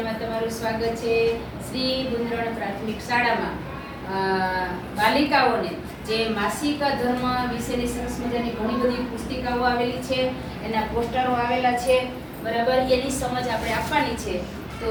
તમારું સ્વાગત છે. શ્રી ગુંદરણ પ્રાથમિક શાળામાં બાલિકાઓને જે માસિક ધર્મ વિશેની સરસ મજાની ઘણી બધી પુસ્તિકાઓ આવેલી છે, એના પોસ્ટરો આવેલા છે, બરાબર. એની સમજ આપણે આપવાની છે, તો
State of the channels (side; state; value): both; identical; correlation 1.00